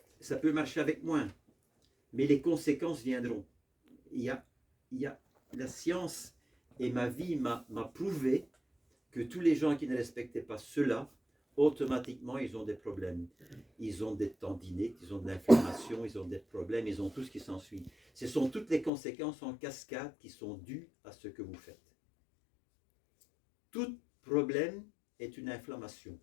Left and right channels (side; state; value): right; drops out; at 18.9 s